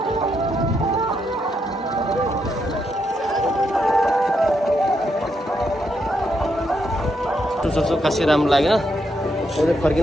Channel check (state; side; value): normal; both; correlation 0.79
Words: सोच्छु खासै राम्रो लाग्यो।